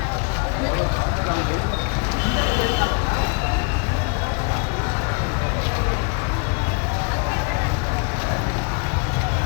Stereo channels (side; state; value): right; quieter; 34.5 dB